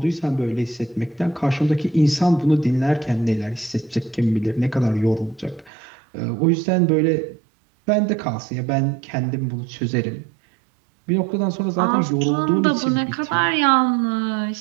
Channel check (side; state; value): left; drops out; at 5.7 s